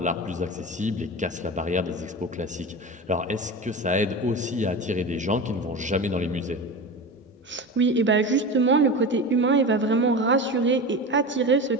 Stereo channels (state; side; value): normal; both; correlation 0.28